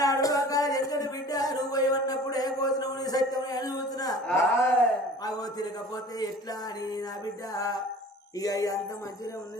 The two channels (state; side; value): normal; both; correlation 0.44